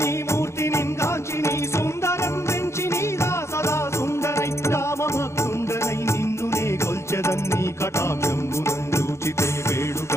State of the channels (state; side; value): late; right; 0.13 ms